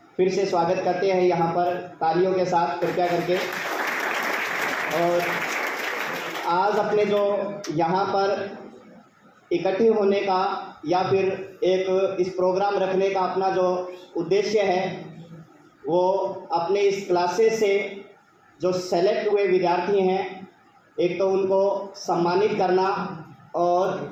फिर से स्वागत करते हैं यहाँ पर तालियों के साथ कृपया करके। और आज अपने जो यहाँ पर इकट्ठे होने का या फिर एक इस प्रोग्राम रखने का अपना जो उद्देश्य है वो अपने इस क्लासेस से जो सेलेक्ट हुए विद्यार्थी हैं, एक तो उनको सम्मानित करना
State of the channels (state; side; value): identical; both; correlation 1.00